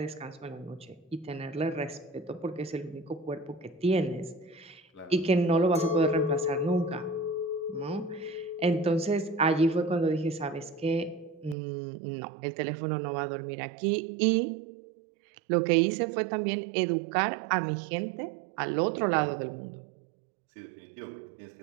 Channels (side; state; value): left; drops out; at 11.6 s